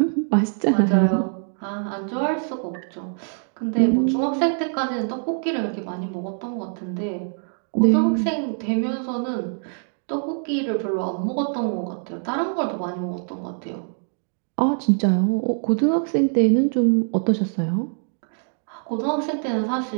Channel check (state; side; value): silent; left; 57 dB below the other